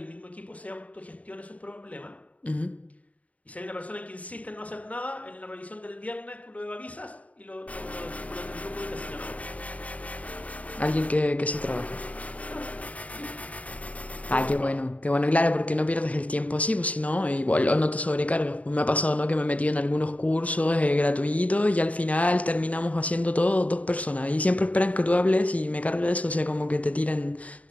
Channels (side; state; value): right; late; 0.069 ms